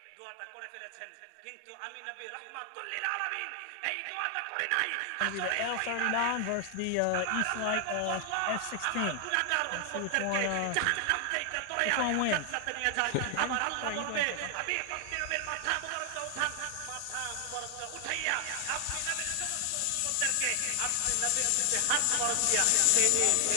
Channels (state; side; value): different; both; correlation 0.00